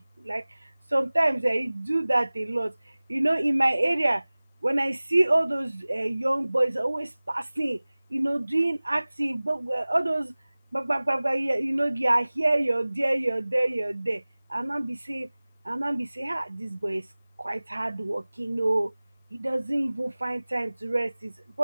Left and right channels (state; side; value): inverted; both; correlation -0.99